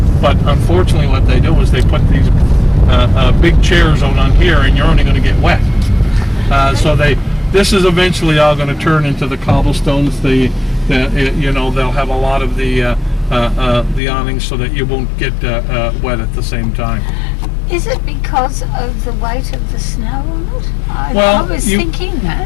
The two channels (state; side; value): drops out; right; at 14.0 s